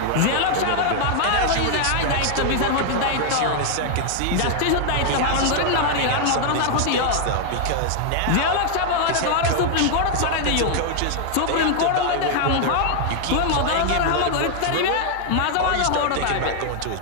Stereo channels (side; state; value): both; different; correlation 0.00